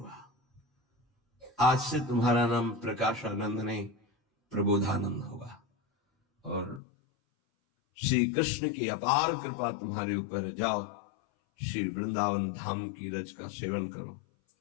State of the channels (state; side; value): drops out; right; at 6.8 s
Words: आज से तुम्हारा नाम प्रकाशानंद नहीं, प्रबोधानंद होगा, और श्री कृष्ण की अपार कृपा तुम्हारे ऊपर, जाओ श्री वृंदावन धाम की रज का सेवन करो।